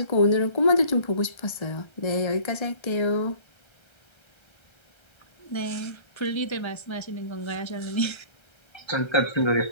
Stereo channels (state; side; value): late; right; 1.3 ms